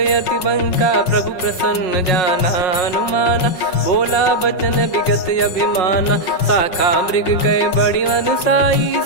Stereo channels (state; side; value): late; right; 5.5 ms